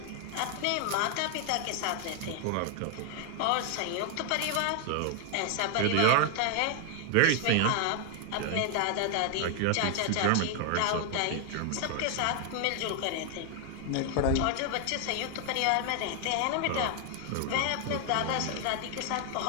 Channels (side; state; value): both; different; correlation 0.00